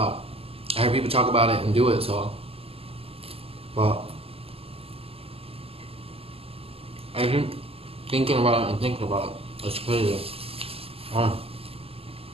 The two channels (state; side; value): late; left; 0.28 ms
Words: I heard people talk about it and do it, so. But I think thinking about it and thinking about it, it's crazy.